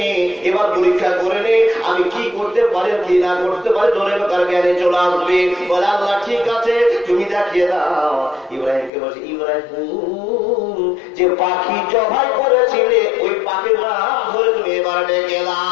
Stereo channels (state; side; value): drops out; right; at 8.9 s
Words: এবার পরীক্ষা করে নে আমি কি করতে পারি কি না করতে পারি, জোরে কার জ্ঞানে চলে আসবে। বলে আল্লাহ ঠিক আছে তুমি দেখিয়ে দাও। ইব্রাহিমকে বলছে ইব্রাহিম যে পাখি জবাই করেছিলে ওই পাখির নাম ধরে তুমি এবার ডেকে